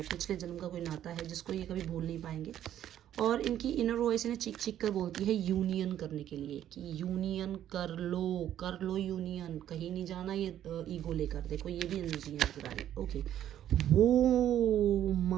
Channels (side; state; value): left; quieter; 11.2 dB